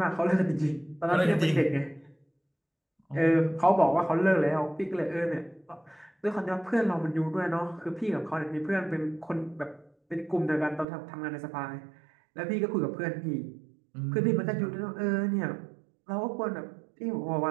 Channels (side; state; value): left; drops out; at 10.9 s